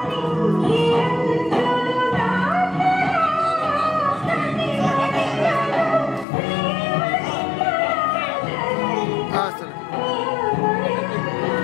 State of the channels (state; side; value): drops out; right; at 6.2 s